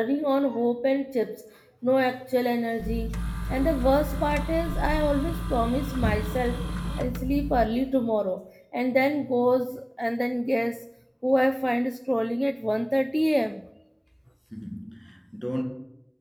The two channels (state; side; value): identical; both; correlation 1.00